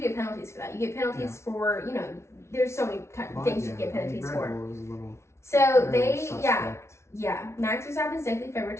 get penalties for that. You get penalties for there's so many things you get penalties for. So Max Verstappen definitely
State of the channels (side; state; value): right; late; 0.13 ms